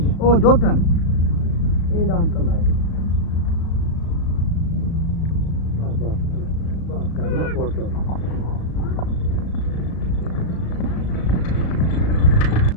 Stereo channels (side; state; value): right; late; 36 ms